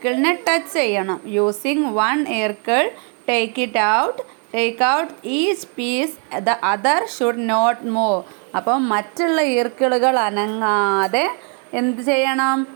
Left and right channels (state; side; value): quieter; left; 39.6 dB